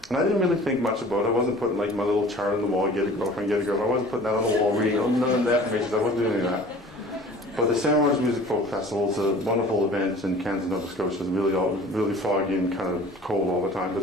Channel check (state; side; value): normal; both; correlation 0.45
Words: And I didn't really think much about it. I wasn't putting like my little chart on the wall, get a girlfriend, get a girlfriend. I wasn't putting that on the wall, reading none of the affirmations. I wasn't doing any of that. But the Stan Rogers Music Folk Festival is a wonderful event in Kansas, Nova Scotia. It's really foggy and kind of cold all the time, but